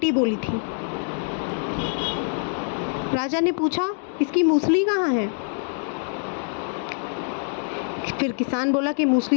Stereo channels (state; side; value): silent; right; 62 dB below the other